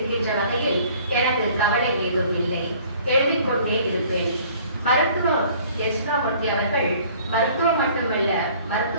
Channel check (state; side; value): inverted; both; correlation -0.54